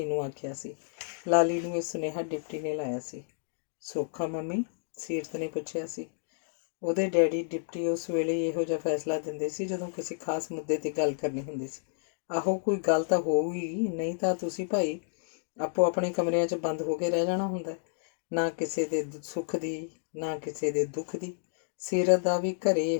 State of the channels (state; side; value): silent; right; digital silence